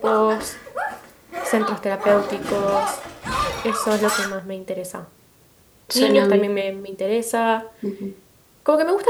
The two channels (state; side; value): identical; both; correlation 1.00